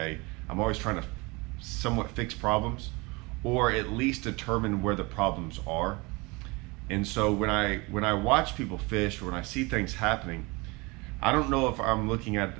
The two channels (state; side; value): quieter; left; 25.9 dB